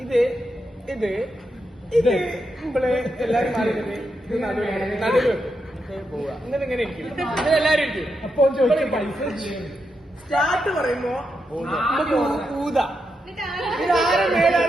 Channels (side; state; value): both; normal; correlation 0.85